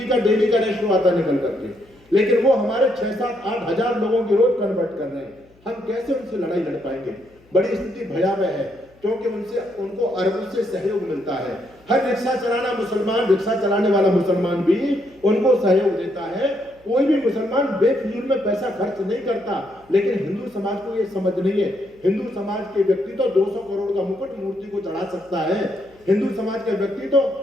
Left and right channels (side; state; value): left; noise; hum, 30 dB below the sound